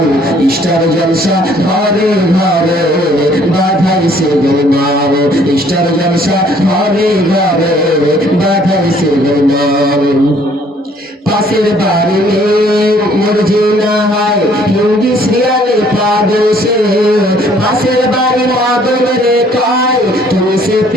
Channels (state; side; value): normal; both; correlation 0.61